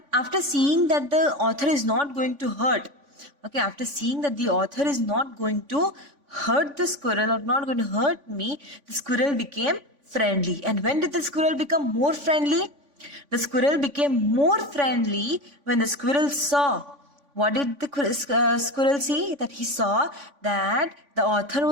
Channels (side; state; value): left; late; 3.5 ms